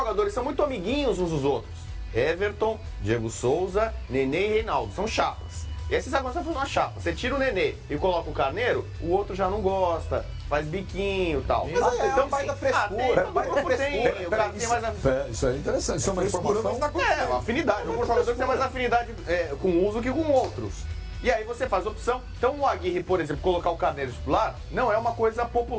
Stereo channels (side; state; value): both; identical; correlation 1.00